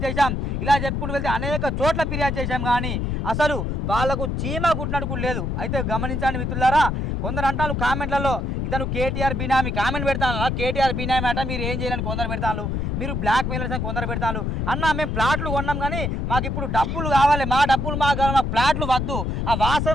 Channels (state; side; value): noise; left; rumble, 1 dB below the sound